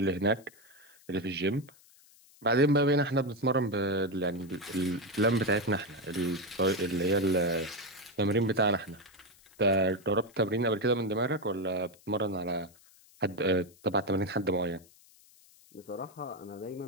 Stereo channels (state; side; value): noise; left; hiss, 27 dB below the sound